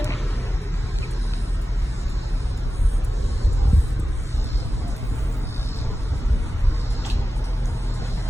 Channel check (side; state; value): both; normal; correlation 0.94